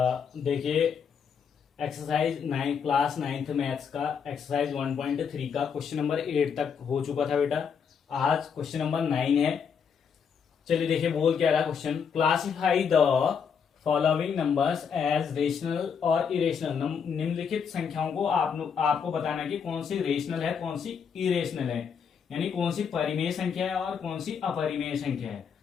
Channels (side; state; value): right; quieter; 6.7 dB